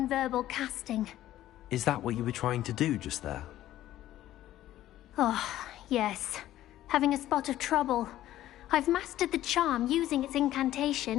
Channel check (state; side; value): quieter; right; 13.7 dB